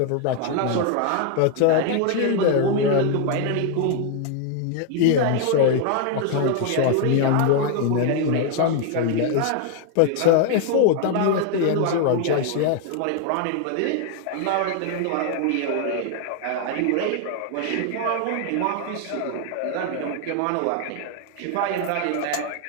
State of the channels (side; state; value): both; different; correlation 0.00